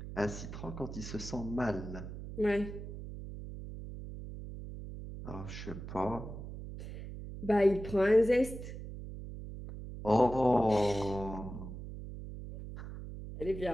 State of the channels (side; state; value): right; noise; hum, 10 dB below the sound